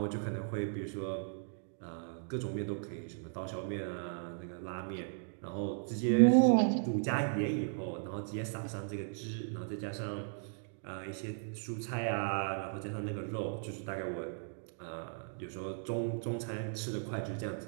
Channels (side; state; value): left; silent; digital silence